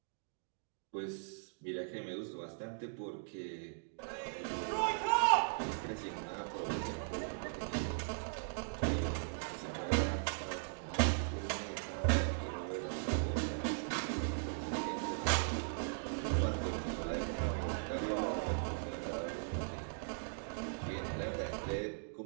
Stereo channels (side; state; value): left; silent; digital silence